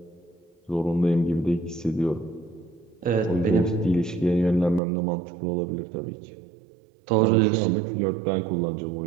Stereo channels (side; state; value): left; drops out; at 4.8 s